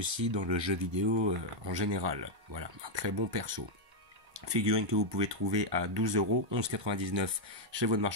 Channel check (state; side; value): late; left; 1.2 ms